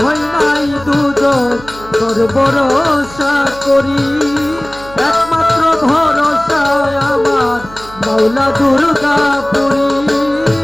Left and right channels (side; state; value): right; noise; hum, 18 dB below the sound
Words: নাই দুজন তোর ভরসা করি, একমাত্র ভরসায় আমার মাওলা দুর্গা পুরী।